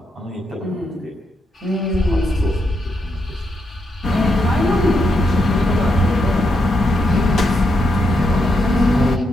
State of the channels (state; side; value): normal; both; correlation 0.82